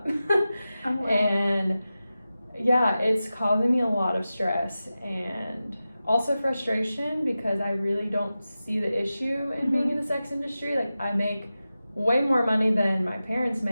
Oh, wow. And yeah, it's causing me a lot of stress and also frustration because I really don't see the issue in being in the sex industry. Like I make way more money than my parents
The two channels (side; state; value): both; inverted; correlation -0.94